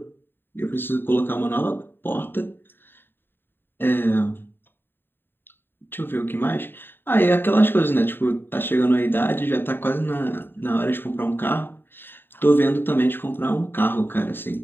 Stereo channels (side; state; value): right; late; 0.098 ms